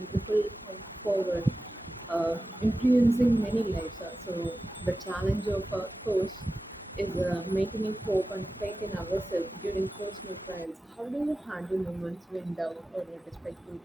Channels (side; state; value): both; normal; correlation 0.94